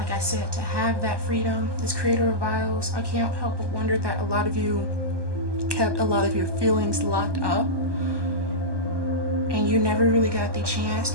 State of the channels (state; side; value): late; left; 1.2 ms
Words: I said, to have that freedom. This creator of vials, I can't help but wonder that a lot of you kept a lot of your feelings locked up, and you never really got the chance